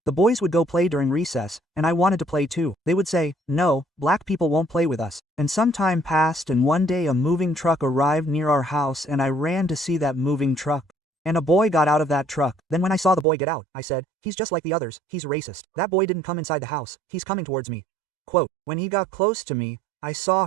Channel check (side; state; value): left; drops out; at 13.2 s